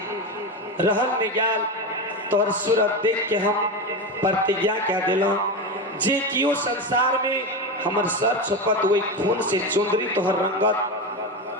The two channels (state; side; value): normal; both; correlation 0.18